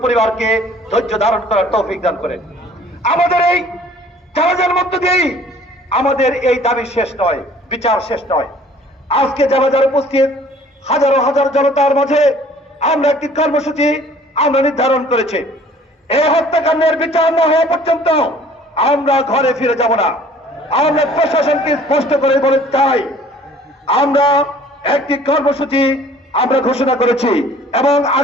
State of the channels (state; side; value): normal; both; correlation 0.53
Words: পরিবারকে ধৈর্য ধারণ করার তৌফিক দান করেন। আমাদের এই জানাজার মধ্য দিয়েই আমাদের এই দাবি শেষ নয়, বিচার শেষ নয়। আজকে জানাজার উপস্থিত হাজারো হাজার জনতার মাঝে আমরা একটি কর্মসূচি নির্ধারণ করেছি। এই হত্যাকাণ্ডের বিচার না হওয়া পর্যন্ত আমরা ঘরে ফিরে যাব না। আমরা প্রশাসনকে স্পষ্ট করে বলে চাই, আমরা একটি কর্মসূচি ঘোষণা করেছি এবং